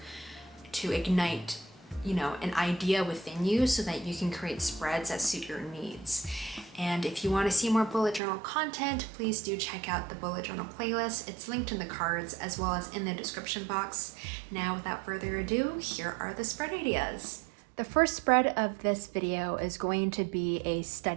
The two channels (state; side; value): drops out; left; at 8.2 s